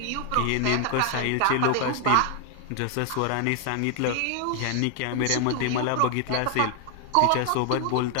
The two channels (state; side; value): different; both; correlation 0.00